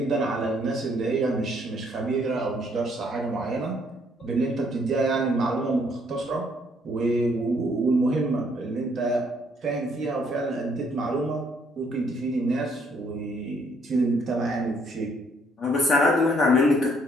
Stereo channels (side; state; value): both; normal; correlation 0.67